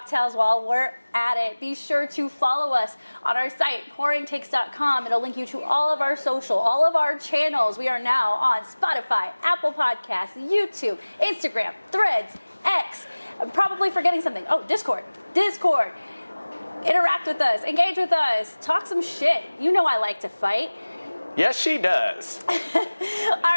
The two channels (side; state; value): both; inverted; correlation -1.00